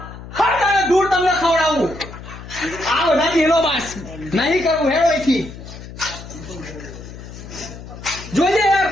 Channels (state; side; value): noise; left; hum, 14 dB below the sound